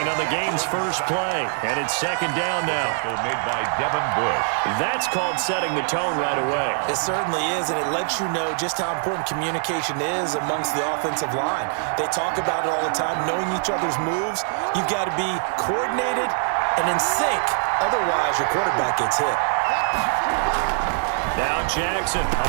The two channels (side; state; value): left; silent; digital silence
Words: on the game's first play. And it's second down now. Made by Devin Bush. That's called setting the tone right away. It certainly is, and it lets you know just how important communication is amongst the offensive line. They talk about it all the time, knowing each other's moves. You've got to be coordinated and in sync. Otherwise, your quarterback gets hit. Now Jackson